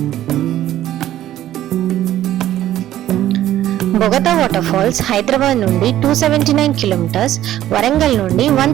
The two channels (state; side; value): quieter; left; 13.0 dB